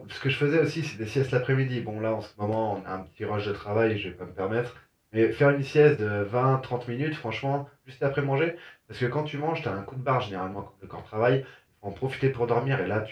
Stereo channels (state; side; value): identical; both; correlation 1.00